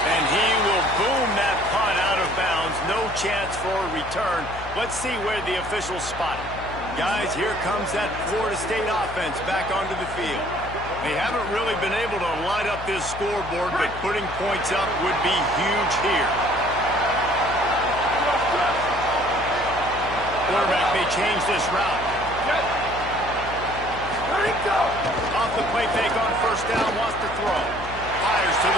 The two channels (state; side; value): noise; left; hum, 12 dB below the sound